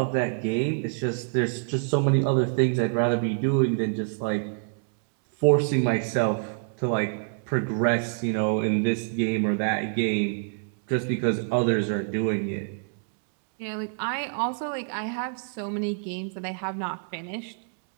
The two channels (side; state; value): left; silent; 61 dB below the other